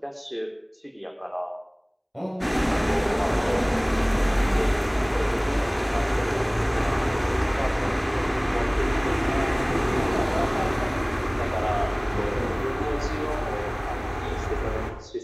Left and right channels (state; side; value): identical; both; correlation 1.00